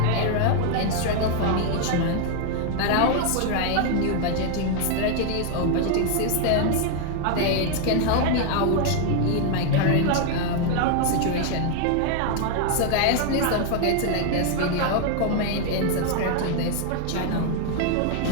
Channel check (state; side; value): different; both; correlation 0.00